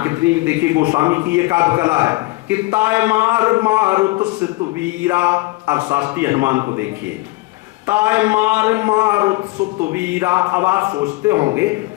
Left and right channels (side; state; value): right; quieter; 21.7 dB